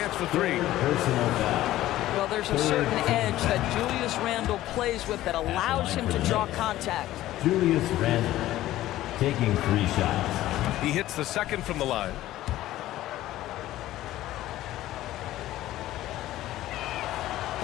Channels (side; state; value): right; quieter; 14.8 dB